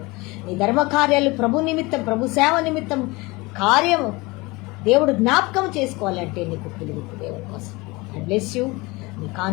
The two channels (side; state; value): right; quieter; 23.7 dB